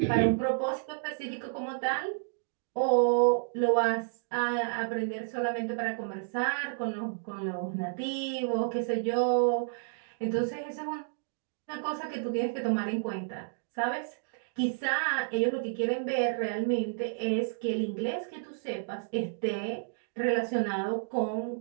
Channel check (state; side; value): silent; left; digital silence